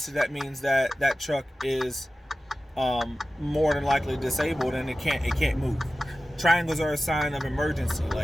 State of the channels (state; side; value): normal; both; correlation 0.95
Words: that means that that truck is more than likely disabled and it can't move. Triangles are a sign of emergency,